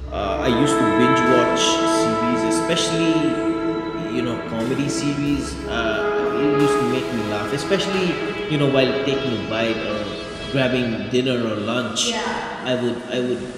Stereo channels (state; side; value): identical; both; correlation 1.00